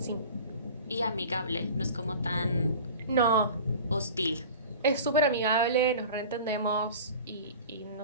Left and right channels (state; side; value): inverted; both; correlation -0.39